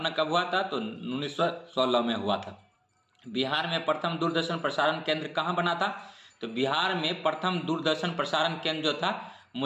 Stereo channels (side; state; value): both; identical; correlation 1.00